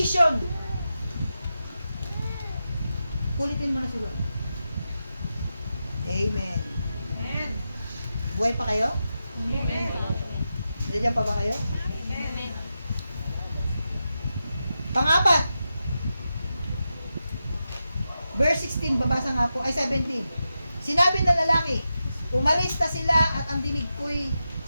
kulitin mo na si Lord. Amen. Amen. Buhay pa kayo? Amen. Nandiyan pa ba kayo? Amen. Pang-apat. Verse 16, babasa nga po, ay 17. Sinabi ng lalaki, umalis na sila at ang dinig ko'y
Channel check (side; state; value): both; inverted; correlation -0.89